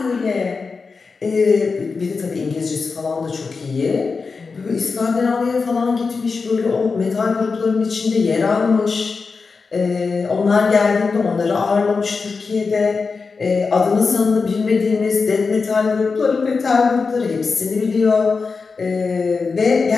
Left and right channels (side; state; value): right; quieter; 4.7 dB